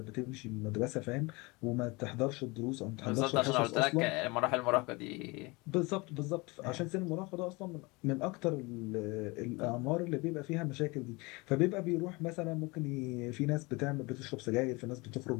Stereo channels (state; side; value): quieter; right; 25.4 dB